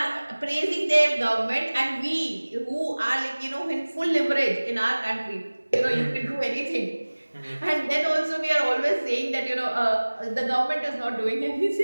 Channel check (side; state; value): both; inverted; correlation -1.00